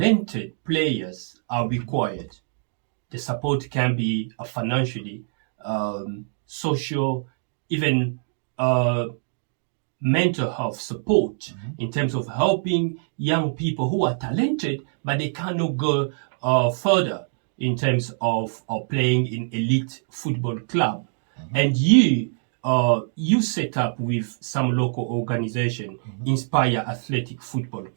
players are required. The support can be financially, social, even uh, mental health support in terms of helping young people who are talented but they cannot go further in terms of playing in elite football club. And you set up with some local organization, Inspire Athletic Football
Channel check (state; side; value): silent; left; digital silence